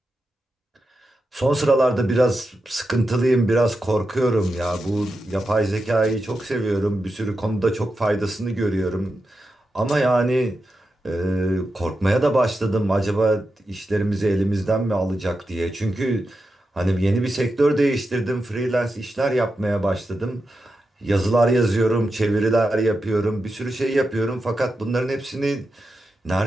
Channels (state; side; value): normal; both; correlation 0.89